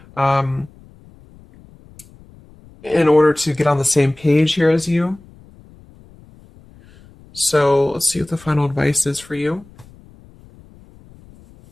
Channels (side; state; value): left; noise; rumble, 25 dB below the sound